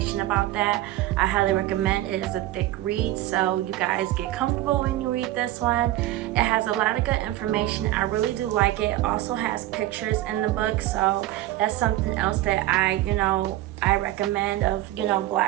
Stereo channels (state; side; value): quieter; left; 15.2 dB